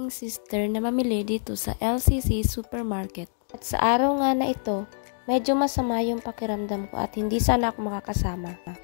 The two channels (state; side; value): silent; right; digital silence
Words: sister na mamili dito sa LCC Supermarket. At sa araw nga na ito, medyo masama yung pakiramdam ko at hindi sana ako makakasama.